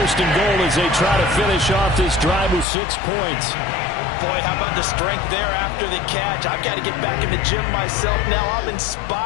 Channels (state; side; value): drops out; right; at 2.7 s